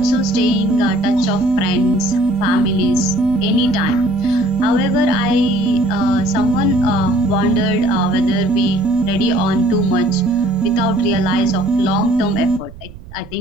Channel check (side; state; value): right; noise; rumble, 18 dB below the sound